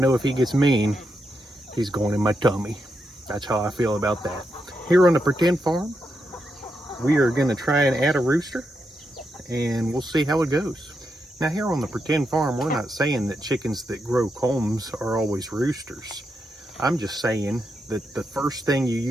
if he gets mean, he's going in my tummy. That's how I feel about that. Here on the Pretend Farm, we are going to try and add a rooster, and we'll see how it goes. Now, here on the Pretend Farm, we're not saying that chickens that grow combs are always roosters. I'm just saying that the first thing you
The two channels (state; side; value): normal; both; correlation 0.84